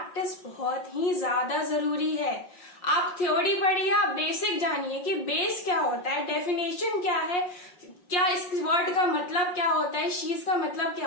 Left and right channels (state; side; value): late; right; 5.6 ms